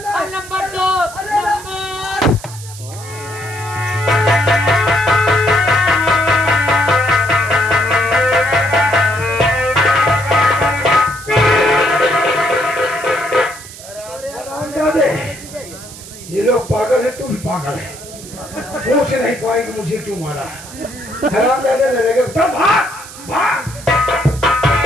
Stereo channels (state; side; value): noise; right; hiss, 16 dB below the sound